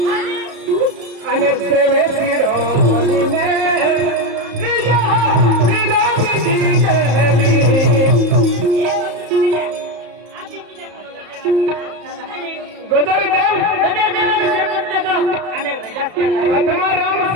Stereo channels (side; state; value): left; late; 34 ms